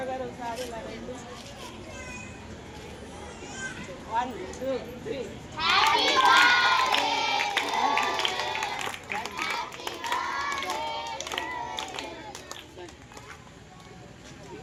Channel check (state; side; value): identical; both; correlation 1.00